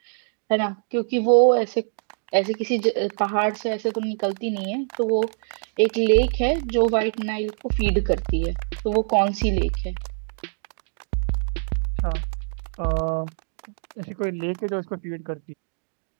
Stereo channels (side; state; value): left; silent; digital silence